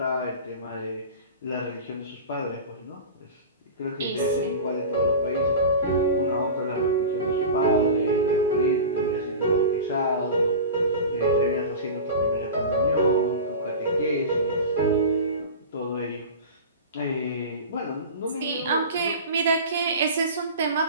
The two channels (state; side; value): inverted; both; correlation -0.31